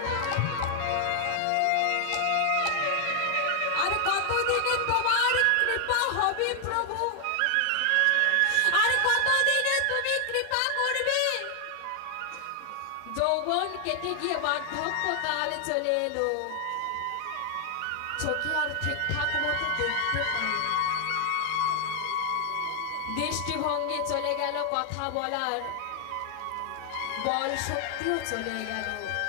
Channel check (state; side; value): different; both; correlation 0.00